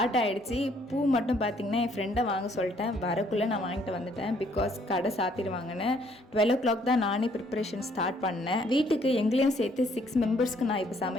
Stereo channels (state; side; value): normal; both; correlation 0.65